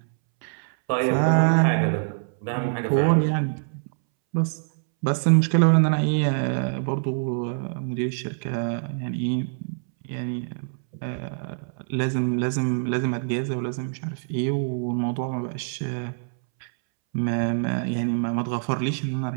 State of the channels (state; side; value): silent; left; 62 dB below the other